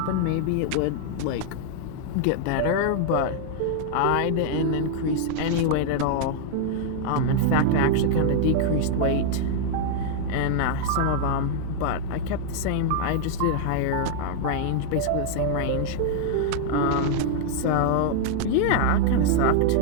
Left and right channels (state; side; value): different; both; correlation -0.01